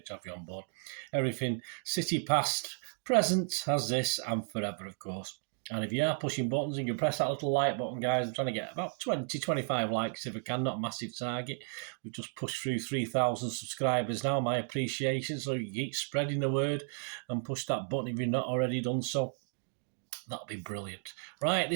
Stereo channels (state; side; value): silent; left; 55 dB below the other